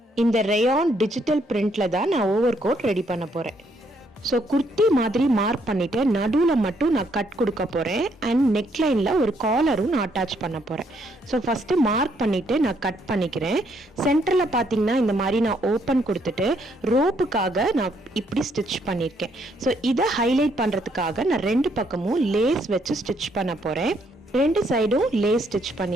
இந்த ரேயான் டிஜிட்டல் பிரிண்ட்ல தான் நான் ஓவர் கோட் ரெடி பண்ண போறேன். ஸோ குர்த்தி மாதிரி மார்க் பண்ணிட்டு நடுவில் மட்டும் நான் கட் கொடுக்க போகிறேன். அண்ட் நெக்லைனில் ஒரு காலரும் நான் அட்டாச் பண்ண போகிறேன். ஸோ ஃபஸ்ட்டு மார்க் பண்ணிவிட்டு நான் கட் பண்ணிக்கிறேன். சென்டரில் பார்த்தீங்கன்னா இந்த மாதிரி நான் ஓப்பன் கொடுத்துட்டு ரோப்புக்காக நான் இப்படி ஸ்டிச் பண்ணியிருக்கேன். ஸோ இதை ஹைலைட் பண்ணுறதுக்காக நான் ரெண்டு பக்கமும் லேஸ் வச்சு ஸ்டிச் பண்ண போகிறேன். ரெண்டு சைடும் லேஸ் ஸ்டிச்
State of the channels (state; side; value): normal; both; correlation 0.71